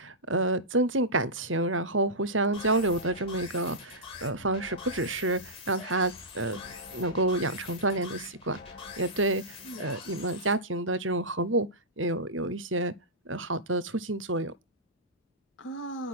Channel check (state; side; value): normal; both; correlation -0.13